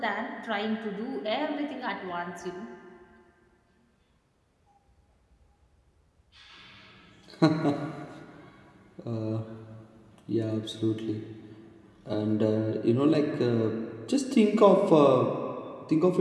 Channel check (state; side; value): identical; both; correlation 1.00